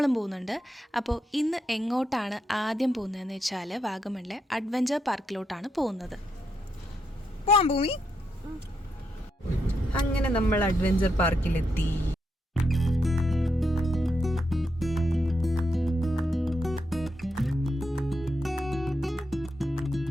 പോകുന്നുണ്ട്. അപ്പോൾ ഇന്ന് എങ്ങോട്ടാണ് ആദ്യം പോകുന്നതെന്ന് വെച്ചാൽ വാഗമണിലെ അഡ്വഞ്ചർ പാർക്കിലോട്ടാണ് പോകുന്നത്. ഭൂമി അങ്ങനെ നമ്മൾ അഡ്വഞ്ചർ പാർക്കിലെത്തി.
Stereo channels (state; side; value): normal; both; correlation 0.82